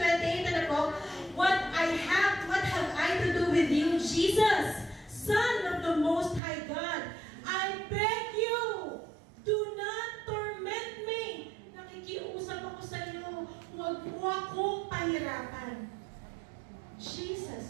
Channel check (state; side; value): drops out; left; at 6.4 s